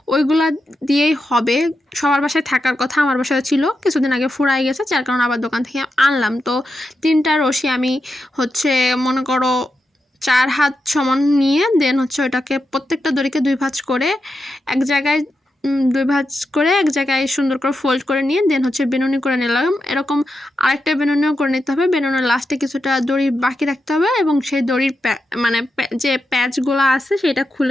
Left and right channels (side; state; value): both; normal; correlation 0.87